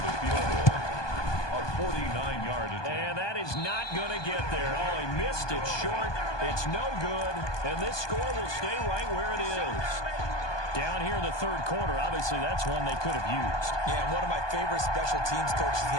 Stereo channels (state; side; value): late; right; 1.2 ms